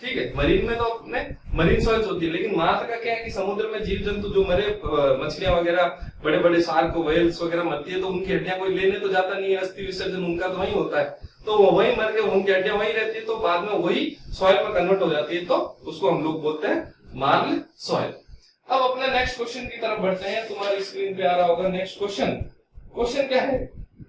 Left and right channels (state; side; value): identical; both; correlation 1.00